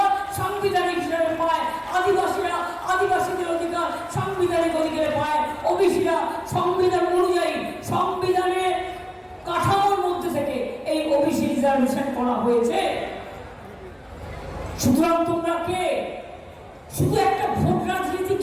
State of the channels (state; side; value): identical; both; correlation 1.00